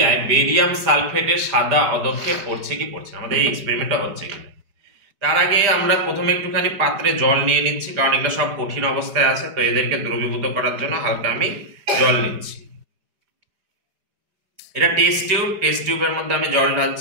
বেরিয়াম সালফেটের সাদা অধক্ষেপ পড়ছে কি পড়ছে না, আমাদের এই এক্সপেরিমেন্টটা হচ্ছে কিনা। তার আগে আমরা প্রথমে একটুখানি পাত্রে জল নিয়ে নিচ্ছি, কারণ এগুলো সব কঠিন অবস্থায় আছে, তো এদেরকে দ্রবীভূত করার জন্য হালকা আমি জল নিচ্ছি। এটা টেস্ট টিউবের মধ্যে আমি জল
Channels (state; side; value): late; left; 4.9 ms